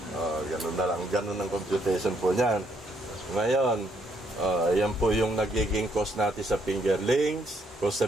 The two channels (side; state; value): both; normal; correlation 0.72